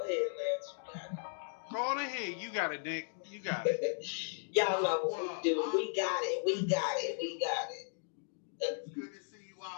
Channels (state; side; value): silent; right; digital silence